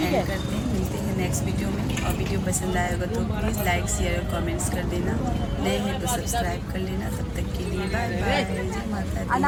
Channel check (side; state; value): both; identical; correlation 1.00